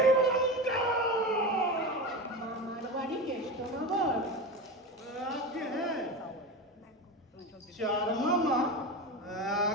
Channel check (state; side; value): normal; both; correlation 0.23